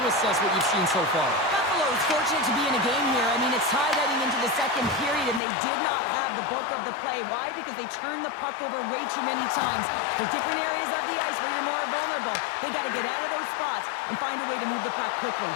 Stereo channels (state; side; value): drops out; right; at 5.4 s